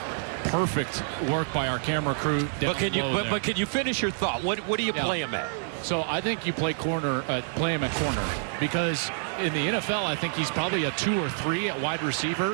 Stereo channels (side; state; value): left; silent; digital silence